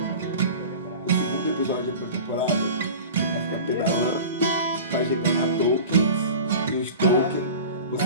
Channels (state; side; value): inverted; both; correlation -0.36